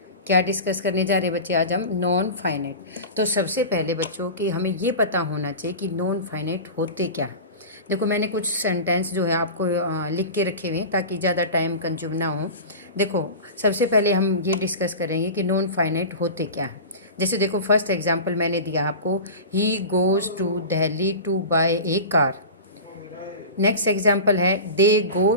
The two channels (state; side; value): inverted; both; correlation -0.30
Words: क्या डिस्कस करने जा रहे हैं बच्चे आज हम? Non finite. तो सबसे पहले बच्चों कि हमें ये पता होना चाहिए कि नॉन फाइनाइट होते क्या है। देखो मैंने कुछ सेंटेंस जो है आपको लिख के रखे हुए हैं ताकि ज़्यादा टाइम कंज्यूम ना हो। देखो सबसे पहले हम ये डिस्कस करेंगे कि नॉन फाइनाइट होते क्या है। जैसे देखो फर्स्ट एग्जांपल मैंने दिया आपको, he goes to Delhi to buy a car. Next example है, they go